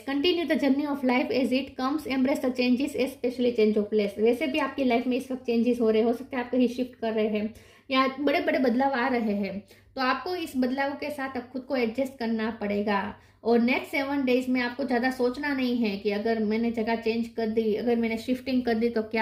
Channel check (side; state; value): both; identical; correlation 1.00